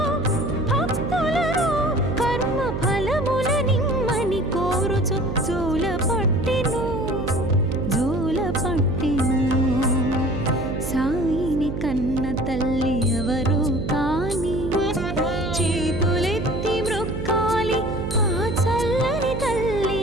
భక్తులను. కర్మ ఫలముల నిమ్మని కోరుచు జోల పట్టెను, జోల పట్టెను. సాయిని కన్న తల్లి ఎవరు కాని, చేతులెత్తి మ్రొక్కాలి ఆ చల్లని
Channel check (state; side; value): noise; right; hum, 4 dB below the sound